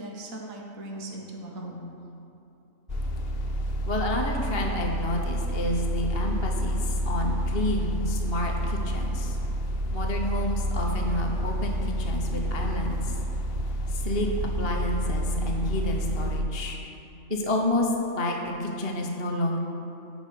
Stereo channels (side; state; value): left; late; 2.9 ms